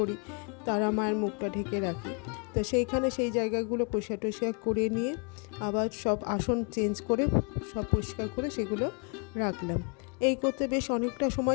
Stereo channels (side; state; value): right; quieter; 37.1 dB